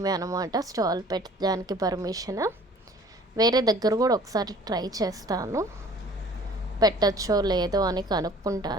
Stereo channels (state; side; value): normal; both; correlation 0.51